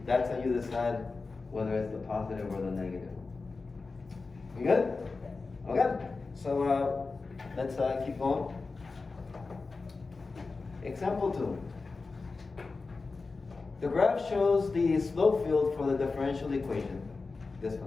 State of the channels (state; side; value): quieter; right; 4.0 dB